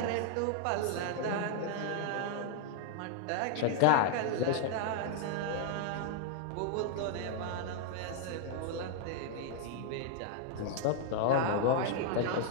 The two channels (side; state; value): both; different; correlation 0.00